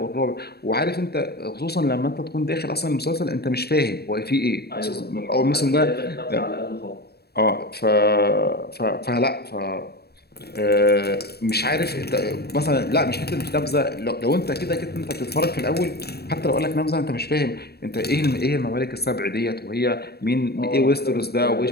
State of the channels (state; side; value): late; right; 0.47 ms